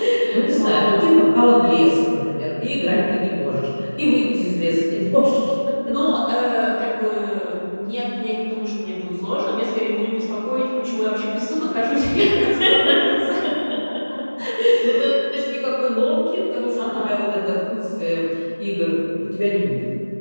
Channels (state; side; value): inverted; both; correlation -1.00